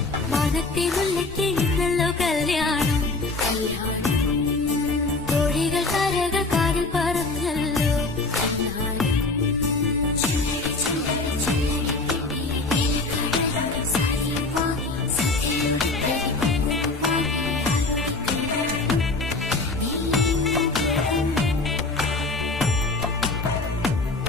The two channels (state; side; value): quieter; right; 3.4 dB